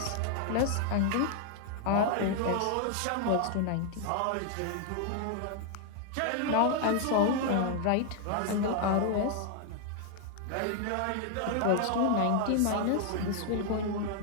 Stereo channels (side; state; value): both; different; correlation 0.00